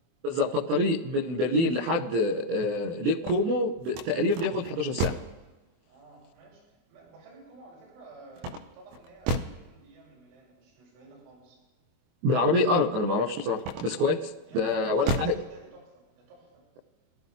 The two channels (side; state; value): left; late; 24 ms